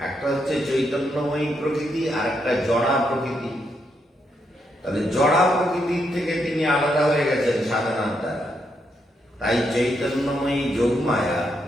একটা হচ্ছে চৈতন্যময়ী প্রকৃতি আর একটা জড়া প্রকৃতি। তাহলে জড়া প্রকৃতির থেকে তিনি আলাদা হয়ে গেছেন সাধনার দ্বারা। তাই চৈতন্যময়ী যোগ মায়া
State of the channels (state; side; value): normal; both; correlation 0.79